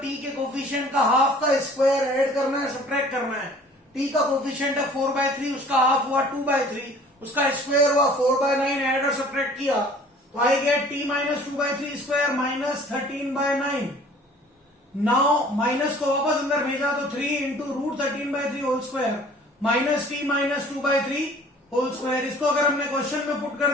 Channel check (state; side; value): normal; both; correlation 0.50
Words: t के कोफिशिएंट का हाफ का स्क्वायर ऐड करना है, सब्ट्रैक्ट करना है. t का कोफिशिएंट है 4/3, उसका हाफ हुआ 2/3, उसका स्क्वायर हुआ 4/9, ऐड और सब्ट्रैक्ट किया तो I get t minus 2/3 square minus 13/9. Now minus को वापस अंदर भेजा तो 3 into root 13/3 whole square minus t minus 2/3 whole square. इसको अगर हमने क्वेश्चन में पुट